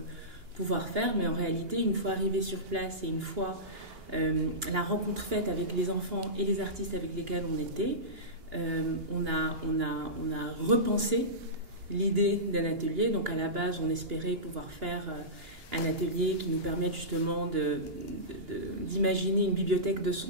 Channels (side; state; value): left; late; 2.9 ms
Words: faire, mais en réalité, une fois arrivé sur place et une fois la rencontre faite avec les enfants et les artistes avec lesquels on était, on a repensé l'idée d'un atelier. Donc à la base, on espérait pouvoir faire un atelier qui nous permette justement d'imaginer une bibliothèque de